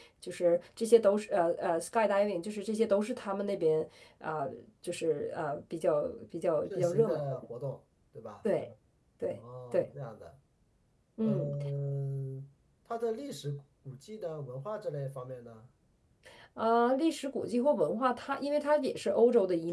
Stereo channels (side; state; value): both; identical; correlation 1.00